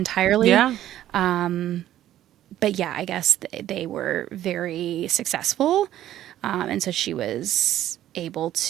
yeah. Um, but yeah, I guess they were very successful. And so she was able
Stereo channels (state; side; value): quieter; left; 12.7 dB